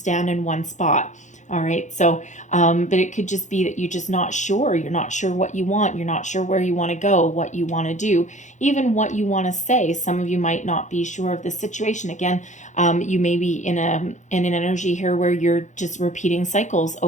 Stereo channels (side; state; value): right; late; 0.35 ms